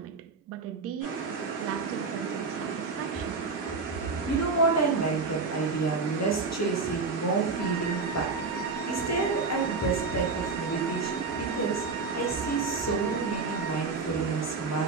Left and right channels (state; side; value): quieter; left; 4.4 dB